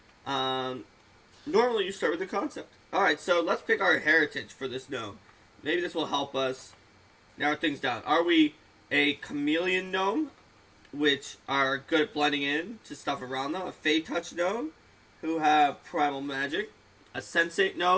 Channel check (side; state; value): both; identical; correlation 1.00